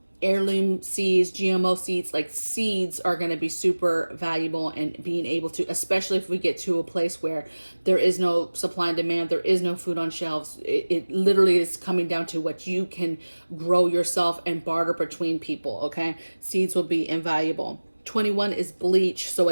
Heirloom seeds, GMO seeds, like seeds are going to be super valuable, and being able to, especially if we get to a place where there is no supply and demand, there is no food on shelves, it literally is coming down to what you can grow yourself and barter between people, okay? Seeds will be invaluable. 21 is bleach. So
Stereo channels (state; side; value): inverted; both; correlation -1.00